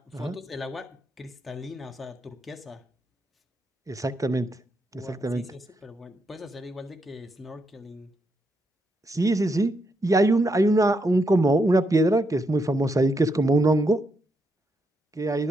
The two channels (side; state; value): both; normal; correlation 0.80